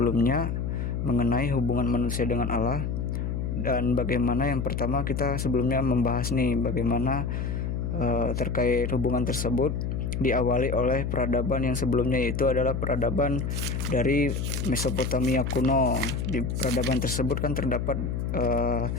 mengenai hubungan manusia dengan Allah, dan bagaimana yang pertama kita sebelumnya membahas nih bagaimana terkait hubungan tersebut diawali oleh peradaban yang sebelumnya, yaitu adalah peradaban dari Mesopotamia kuno. Di peradaban tersebut kan terdapat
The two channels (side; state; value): left; noise; hum, 2 dB below the sound